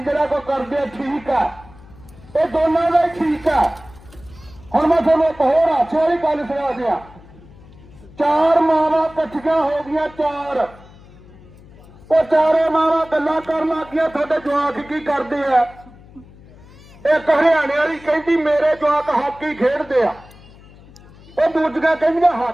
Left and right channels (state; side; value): noise; left; hum, 22 dB below the sound